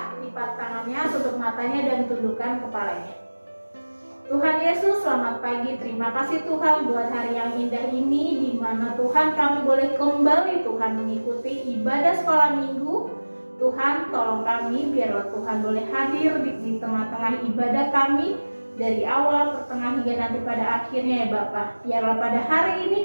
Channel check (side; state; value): both; inverted; correlation -1.00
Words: lipat tangannya, tutup matanya dan tundukkan kepalanya. Tuhan Yesus, selamat pagi. Terima kasih Tuhan buat hari yang indah ini di mana Tuhan kami boleh kembali Tuhan mengikuti ibadah sekolah minggu. Tuhan tolong kami biarlah Tuhan boleh hadir di tengah-tengah ibadah kami dari awal, pertengahan hingga nanti pada akhirnya ya Bapak. Biarlah pada hari ini